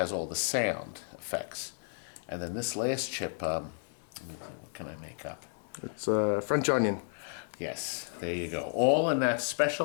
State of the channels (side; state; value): right; silent; digital silence